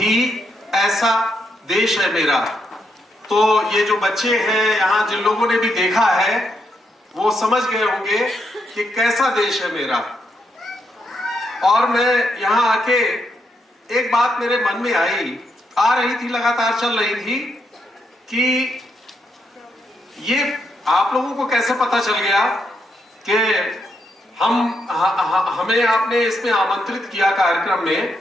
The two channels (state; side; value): normal; both; correlation 0.80